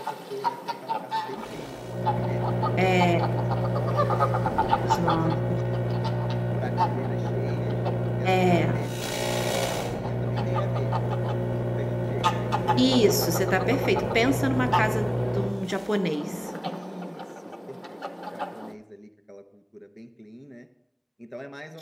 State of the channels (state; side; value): identical; both; correlation 1.00